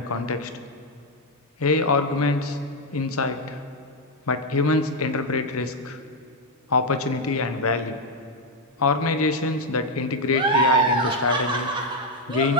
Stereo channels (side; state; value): both; normal; correlation 0.03